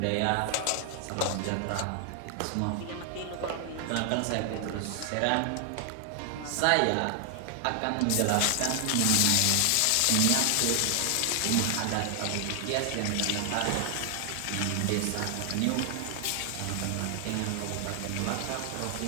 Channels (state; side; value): different; both; correlation 0.00